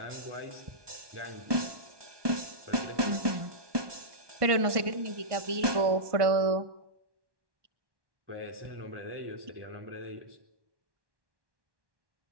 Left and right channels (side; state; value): left; late; 1.2 ms